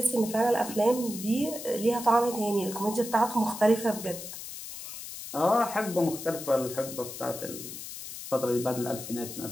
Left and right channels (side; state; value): left; noise; hiss, 10 dB below the sound